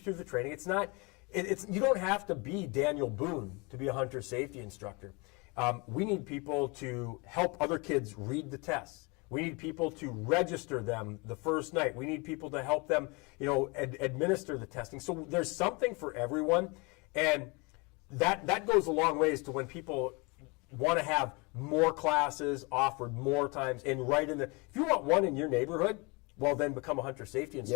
the training. You don't have to be Daniel Boone to be a hunter safety instructor. We need people to help other kids read the tests. We need people to register them the first night. We need people to help them, administer the testing. So there's something for everyone, and that goes a long ways to when people want to have more classes offered more times and if you want one in your neighborhood, well, then become a hunter safety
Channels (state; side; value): quieter; right; 28.7 dB